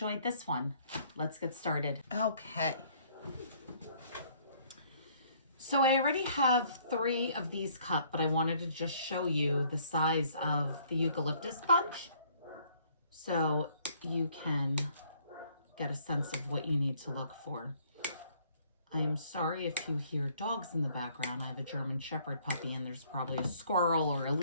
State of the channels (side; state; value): both; inverted; correlation -0.62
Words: this one. Let's get started. Okay. So I already have 3 of these cut, but I wanted to just show you the size of the eucalyptus bunch so you can get a sense of what you need to look for. I'm sorry if you hear dogs in the background. I have a German Shepherd puppy and there's probably a squirrel or a